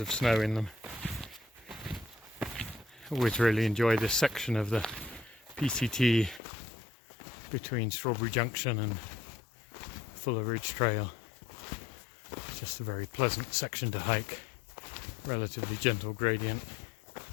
snow in them. Always really enjoy this section of the PCT between Strawberry Junction and Fuller Ridge Trail. Just a very pleasant section to hike, relatively gentle gradient,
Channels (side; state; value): right; drops out; at 6.4 s